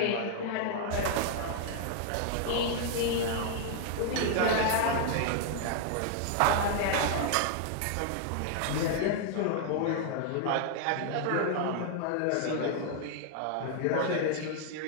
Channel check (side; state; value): both; different; correlation 0.00